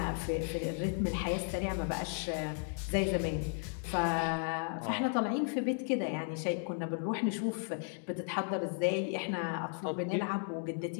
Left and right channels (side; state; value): right; silent; 55 dB below the other